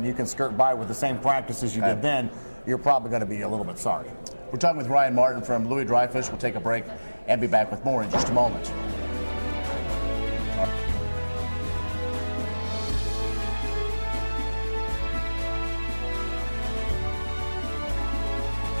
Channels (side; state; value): both; inverted; correlation -1.00